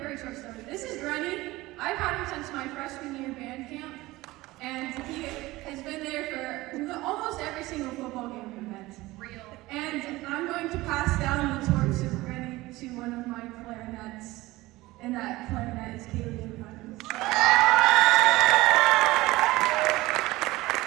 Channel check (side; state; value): left; quieter; 19.3 dB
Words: short story. This is Granny. I've had him since my freshman year band camp, and he has been there for almost every single football game we've been to. Real. And I'm going to pass down the torch of Granny to one of my clarinets, and that clarinet is Kaylee Evans.